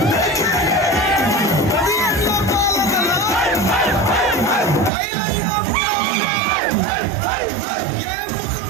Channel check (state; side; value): drops out; left; at 4.9 s